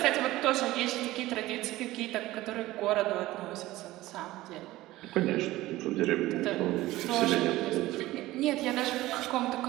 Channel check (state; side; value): quieter; left; 17.3 dB